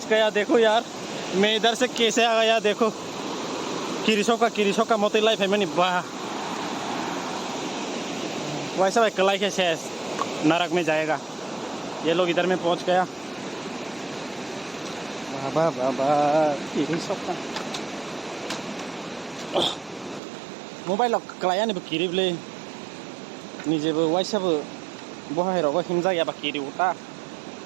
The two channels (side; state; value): left; drops out; at 20.2 s